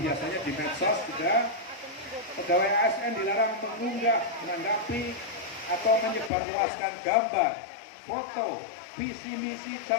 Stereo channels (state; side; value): drops out; right; at 6.3 s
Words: di medsos juga. Pegawai ASN dilarang mengunggah, menanggapi atau menyebarluaskan gambar, foto, visi misi